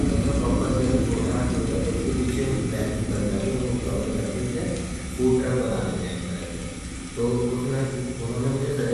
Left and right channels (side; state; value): both; identical; correlation 1.00